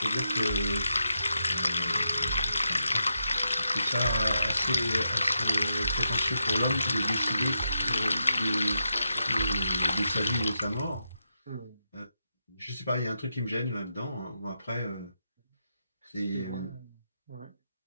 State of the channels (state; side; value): inverted; both; correlation -0.85